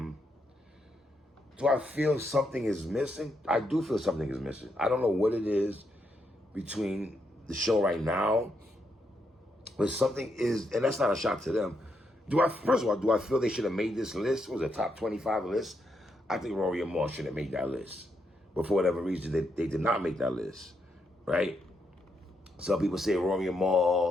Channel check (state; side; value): normal; both; correlation 0.80